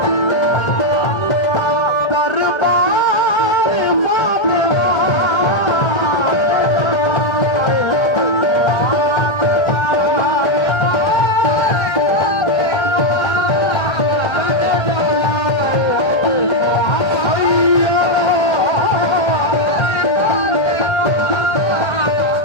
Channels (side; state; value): right; late; 1.3 ms